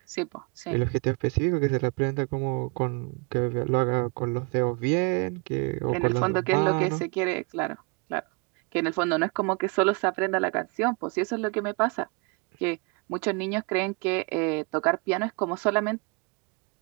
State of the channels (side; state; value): left; quieter; 32.4 dB